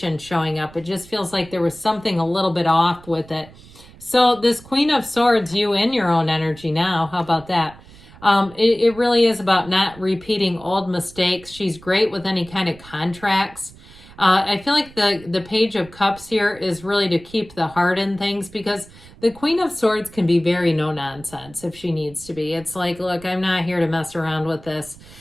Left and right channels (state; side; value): noise; right; rumble, 21 dB below the sound